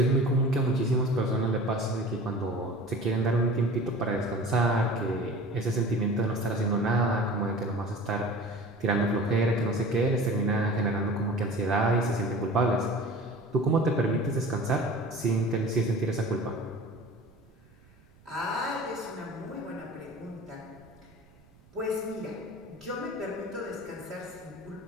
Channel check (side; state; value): right; noise; rumble, 28 dB below the sound